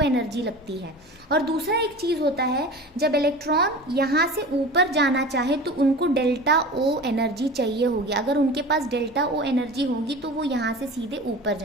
एनर्जी लगती है। और दूसरा एक चीज़ होता है, जब इलेक्ट्रॉन यहाँ से ऊपर जाना चाहे तो उनको डेल्टा ओ एनर्जी चाहिए होगी। अगर उनके पास डेल्टा ओ एनर्जी होगी तो वो यहाँ से सीधे ऊपर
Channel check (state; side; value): normal; both; correlation 0.35